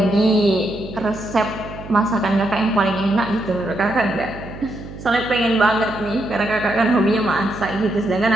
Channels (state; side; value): noise; right; hum, 13 dB below the sound